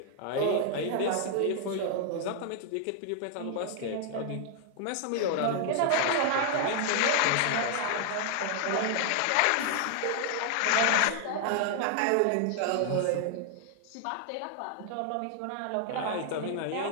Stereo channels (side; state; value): both; different; correlation 0.00